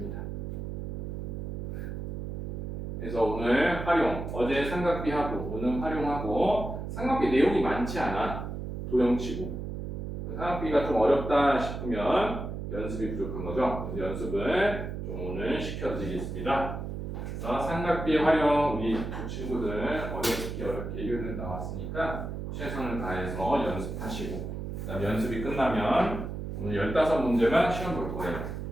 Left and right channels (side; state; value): right; noise; hum, 5 dB below the sound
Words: 그래서 오늘 활용, 어제 삼각비하고 오늘 활용하고 삼각비 내용이 많지 않아. 도형치고. 삼각비가 좀 어렵다 싶으면 연습이 부족한 거죠. 연습을 좀 오늘 시켜드리겠습니다. 그래서 삼각비의 활용 우리 두 친구들 어렵게 예결을 나왔으니까 최선을 다해서 연습하시고 그다음 연습이 끝나면 오늘 15문제만 시험 볼 거예요.